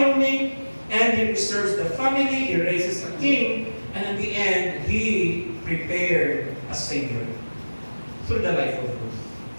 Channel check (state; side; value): inverted; both; correlation -1.00